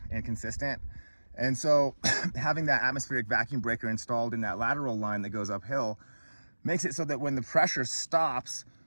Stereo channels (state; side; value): inverted; both; correlation -1.00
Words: inconsistent. And so having that atmospheric vacuum breaker installed in that lateral line that goes uphill makes it so that when the pressure stops,